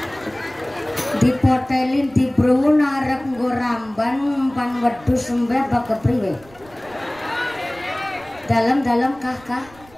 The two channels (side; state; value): right; noise; rumble, 25 dB below the sound